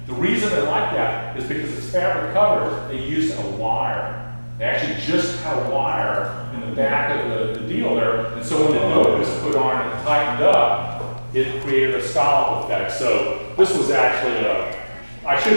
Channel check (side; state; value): both; inverted; correlation -1.00